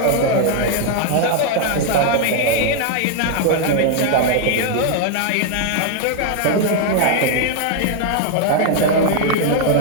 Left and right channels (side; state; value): both; different; correlation 0.00